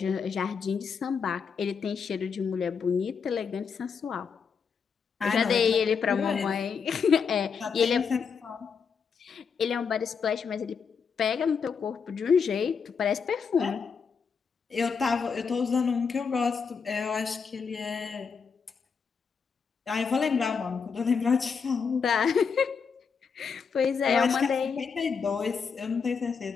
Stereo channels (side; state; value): right; quieter; 5.9 dB